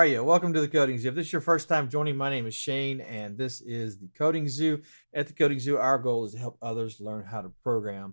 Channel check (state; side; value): inverted; both; correlation -1.00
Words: you? Welcome to the Coding Zoo. If this is your first time joining, my name is Shane, and this is the Coding Zoo. At the Coding Zoo, our goal is to help others learn how to